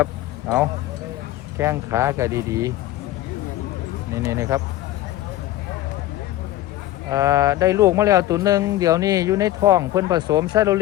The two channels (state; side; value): quieter; right; 15.0 dB